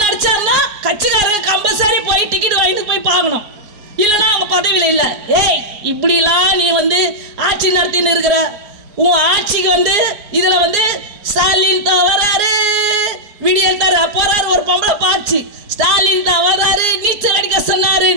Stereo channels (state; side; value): late; left; 4.5 ms